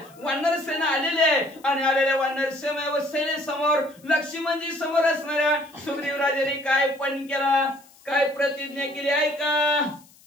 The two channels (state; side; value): noise; left; hiss, 27 dB below the sound